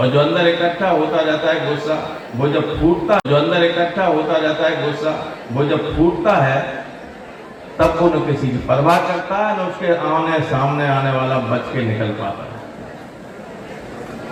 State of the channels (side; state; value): both; identical; correlation 1.00